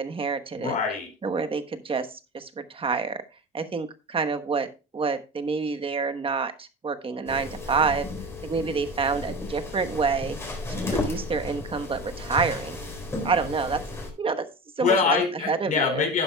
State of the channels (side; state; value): both; normal; correlation 0.29